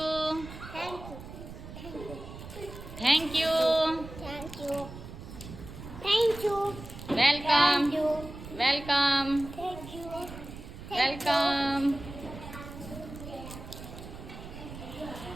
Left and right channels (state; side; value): noise; right; rumble, 13 dB below the sound